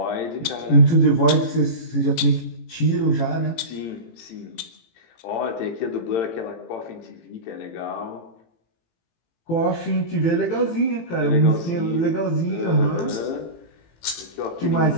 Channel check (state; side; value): late; right; 18 ms